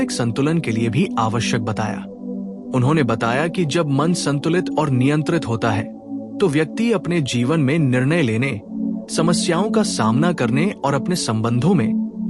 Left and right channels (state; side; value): identical; both; correlation 1.00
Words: संतुलन के लिए भी आवश्यक बताया। उन्होंने बताया कि जब मन संतुलित और नियंत्रित होता है तो व्यक्ति अपने जीवन में निर्णय लेने, समस्याओं का सामना करने और अपने संबंधों